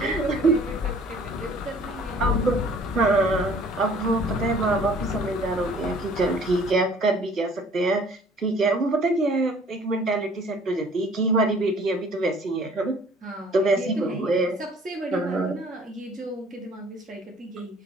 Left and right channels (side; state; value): both; normal; correlation 0.54